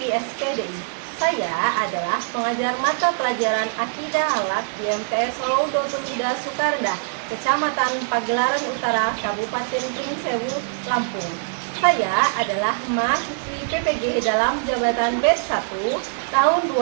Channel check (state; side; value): silent; left; digital silence